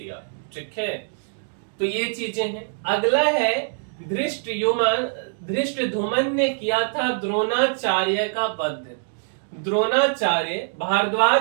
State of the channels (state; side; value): silent; left; 63 dB below the other